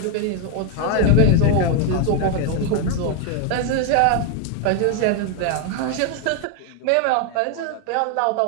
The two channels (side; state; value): both; different; correlation 0.01